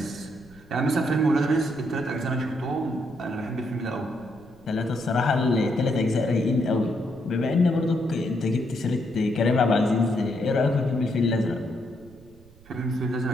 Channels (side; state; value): right; noise; rumble, 25 dB below the sound